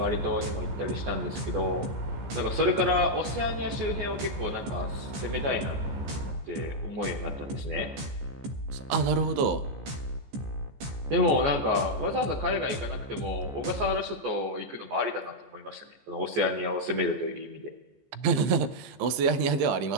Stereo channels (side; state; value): left; late; 14 ms